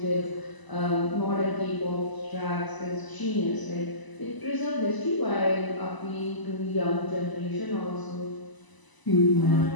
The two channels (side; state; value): right; late; 1.0 ms